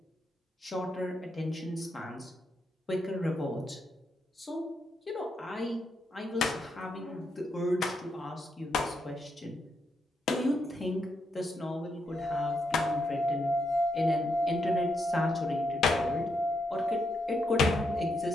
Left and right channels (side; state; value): both; normal; correlation 0.80